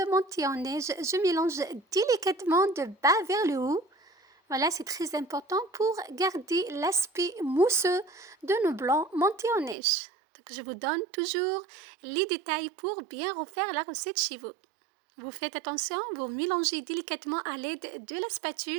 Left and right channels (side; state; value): left; drops out; at 9.8 s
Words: monter en neige. Je mélange délicatement de bas vers le haut. Voilà, c'est très important pour garder l'aspect mousseux de nos blancs montés en neige. Donc, je vous donne toujours les détails pour bien refaire la recette chez vous. Vous faites attention, vous mélangez délicatement à l'aide de la